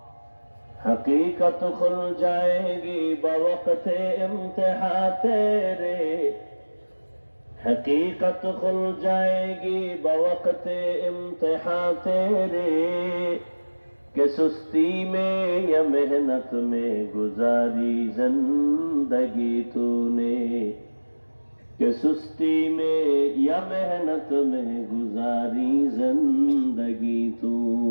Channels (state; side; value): inverted; both; correlation -1.00